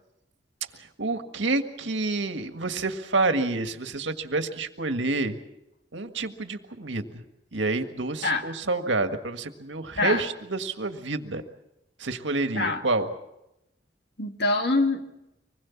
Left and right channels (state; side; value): normal; both; correlation 0.04